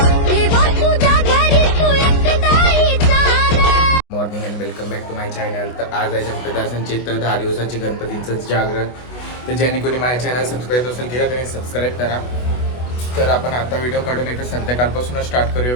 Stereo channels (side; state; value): right; late; 24 ms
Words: देवा तुझ्या घरी तू एकटाईचा ना. Morning and welcome back to my channel. तर आज आहे चंपदासांची तर 10 दिवसांची गणपतींचं जागरण. तर ज्यांनी कोणी माझ्या चॅनल सबस्क्राईब असेल केला त्यांनी सबस्क्राईब करा. तर आपण आता व्हिडिओ काढून येतो संध्याकाळपासूनच स्टार्ट करूया